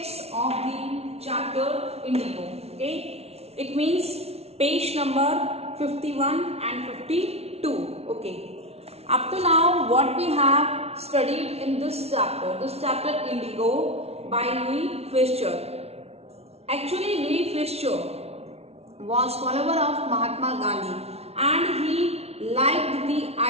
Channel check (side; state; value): left; late; 0.30 ms